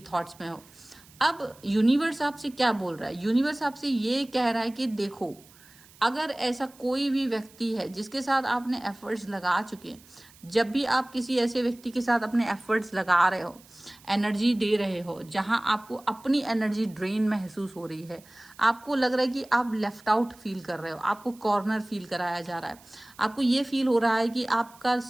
थॉट्स में हो। अब यूनिवर्स आपसे क्या बोल रहा है? यूनिवर्स आपसे ये कह रहा है कि देखो, अगर ऐसा कोई भी व्यक्ति है जिसके साथ आपने एफर्ट्स लगा चुके हैं, जब भी आप किसी ऐसे व्यक्ति के साथ अपने एफर्ट्स लगा रहे हो, एनर्जी दे रहे हो, जहां आपको अपनी एनर्जी ड्रेन महसूस हो रही है, आपको लग रहा है कि आप लेफ्ट आउट फील कर रहे हो, आपको कॉर्नर फील कराया जा रहा है, आपको ये फील हो रहा है कि आपका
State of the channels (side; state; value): right; noise; hiss, 25 dB below the sound